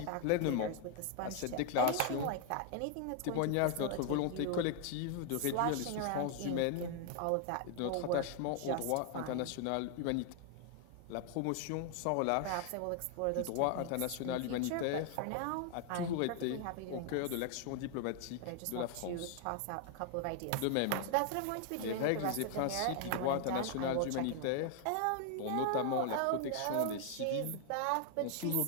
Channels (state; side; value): different; both; correlation 0.00